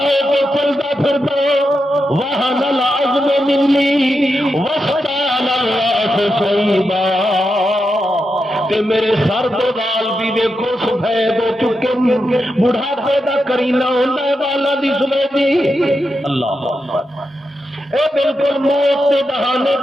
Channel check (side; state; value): both; normal; correlation 0.87